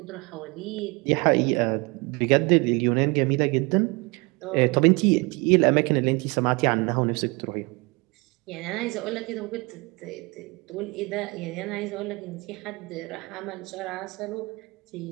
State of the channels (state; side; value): quieter; left; 27.2 dB